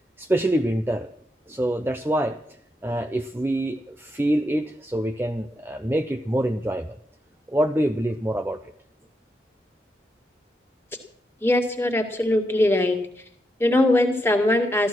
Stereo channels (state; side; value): normal; both; correlation 0.83